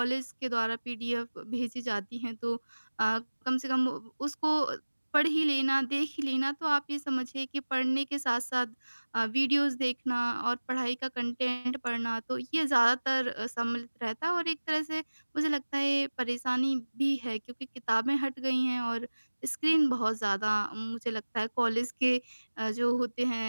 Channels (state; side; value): inverted; both; correlation -1.00